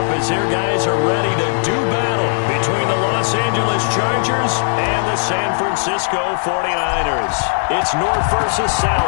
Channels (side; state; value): right; silent; digital silence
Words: as their guys are ready to do battle between the Los Angeles Chargers and the San Francisco 49ers. It's North versus